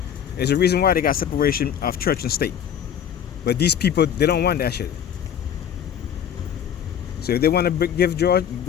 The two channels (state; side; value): quieter; right; 9.1 dB